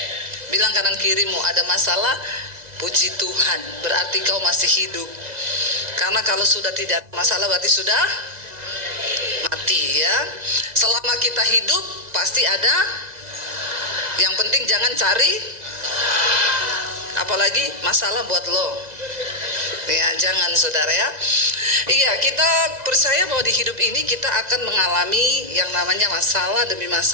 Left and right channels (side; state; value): left; late; 2.0 ms